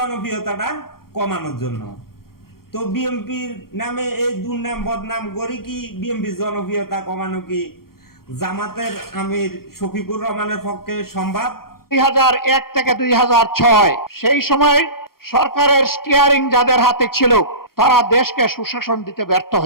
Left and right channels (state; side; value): late; right; 0.93 ms